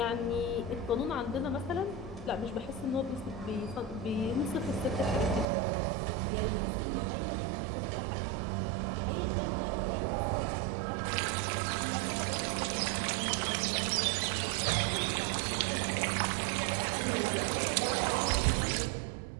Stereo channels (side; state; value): left; drops out; at 5.5 s